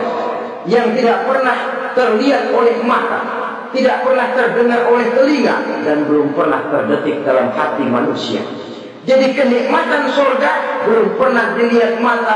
yang tidak pernah terlihat oleh mata, tidak pernah terdengar oleh telinga, dan belum pernah terdetik dalam hati manusia. Jadi kenikmatan surga belum pernah dilihat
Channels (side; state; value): both; identical; correlation 1.00